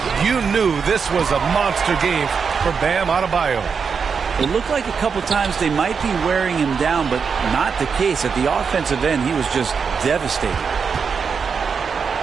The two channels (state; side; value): quieter; left; 5.9 dB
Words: you knew this was a monster game for Bam Adebayo. It looked like a couple times they might be wearing him down, but not the case. At the offensive end, he was just devastating.